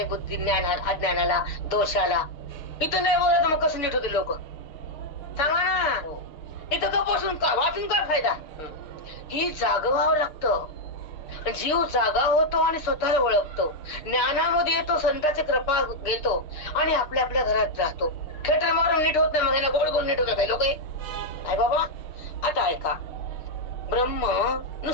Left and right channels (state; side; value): late; right; 6.5 ms